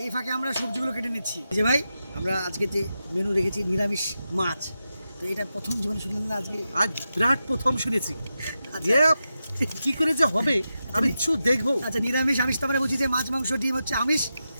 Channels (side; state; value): both; inverted; correlation -0.90